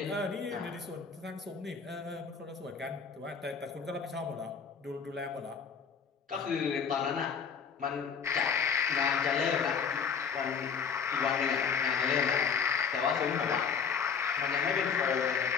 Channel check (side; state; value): right; quieter; 6.4 dB